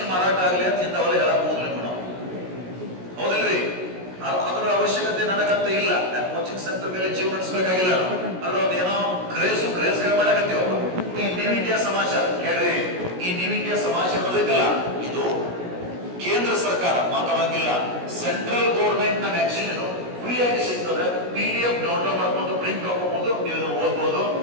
ಮಾರಾಟ ಆಗಲಿ ಅಂತ ಇಂಥವೆಲ್ಲ ಹೇಳಕ್ ಹೋಗ್ಲಿ ನಾವು, ಹೌದಿಲ್ರಿ? ಅದರ ಅವಶ್ಯಕತೆ ನನಗಂತ ಇಲ್ಲ. ಕೋಚಿಂಗ್ ಸೆಂಟರ್ ಮೇಲೆ ಜೀವ ನಡೆಸಬೇಕಾಗಿಲ್ಲ. ಅದ್ರ ಒಂದು ಏನೋ ಕ್ರೇಜ್ ಮಾಡಕತ್ತೀವ. ಈ ನ್ಯೂ ಇಂಡಿಯಾ ಸಮಾಚಾರ ಕೇಳ್ರಿ. ಈ ನ್ಯೂ ಇಂಡಿಯಾ ಸಮಾಚಾರ ಐತಲ್ಲ, ಇದು ಕೇಂದ್ರ ಸರ್ಕಾರ, ಮಾತಾಡಂಗಿಲ್ಲ, ಸೆಂಟ್ರಲ್ ಗೌರ್ಮೆಂಟ್ ನ ಮ್ಯಾಗಝಿನ್. ಇದು ಫ್ರೀ ಆಗಿ ಸಿಗ್ತದೆ. PDF ಡೌನ್ಲೋಡ್ ಮಾಡ್ಕೊಂಡು ಪ್ರಿಂಟ್ ಹಾಕೋಬಹುದು, ನೀವು ಓದ್ಬೋದು.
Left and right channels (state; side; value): late; left; 16 ms